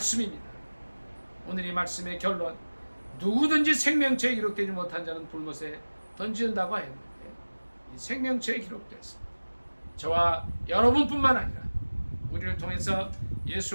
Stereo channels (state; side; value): inverted; both; correlation -1.00